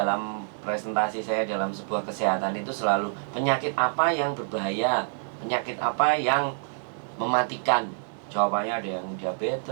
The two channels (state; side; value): silent; left; 60 dB below the other